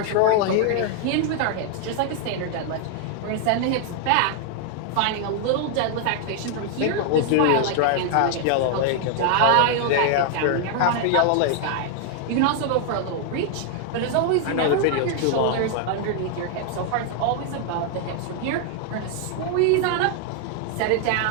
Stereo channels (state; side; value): different; both; correlation 0.00